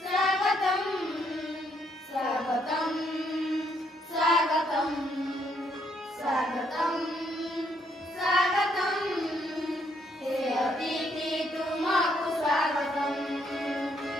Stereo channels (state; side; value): normal; both; correlation 0.72